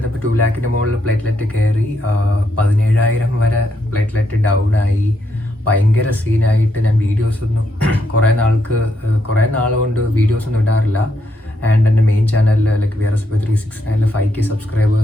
2 lakhന് മുകളിൽ പ്ലേറ്റ്ലെറ്റ് കയറി, 17,000 വരെ പ്ലേറ്റ്ലെറ്റ് ഡൗൺ ആയി. ഭയങ്കര സീനായിട്ട് ഞാൻ വീഡിയോസൊന്നും കുറേ നാളുകൊണ്ട് വീഡിയോസൊന്നും ഇടാറില്ല. ആൻഡ് എൻ്റെ മെയിൻ ചാനലിൽ ലൈക്ക് VRSP 369 5K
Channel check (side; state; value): both; normal; correlation 0.78